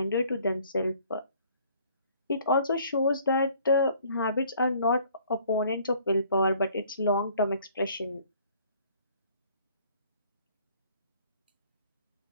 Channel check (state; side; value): inverted; both; correlation -0.58